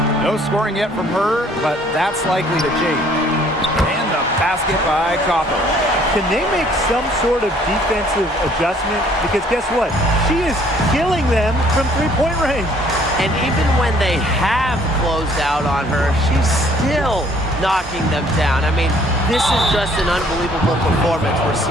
No scoring yet from her, but that's likely to change. And the basket by Copper. Can they make some sort of defensive adjustment? Because guess what? She is killing them from three-point range. And even when they have closed out on her, she's still knocking them down. I mean, this is just an unbelievable performance we're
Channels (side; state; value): both; normal; correlation 0.60